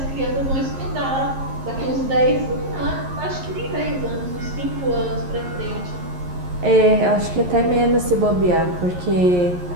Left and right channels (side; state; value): left; late; 11 ms